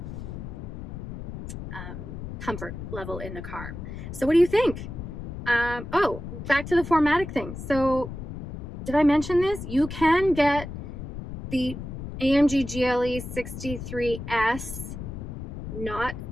comfort level in the car. So what do you think? Oh, back to the 4MATIC thing. So did I mention this? You can get the AMG GLE 63S, not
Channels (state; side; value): noise; left; rumble, 9 dB below the sound